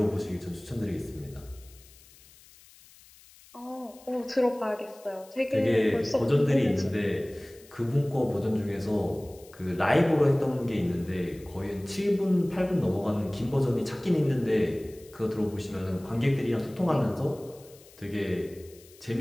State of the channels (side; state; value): left; noise; hiss, 24 dB below the sound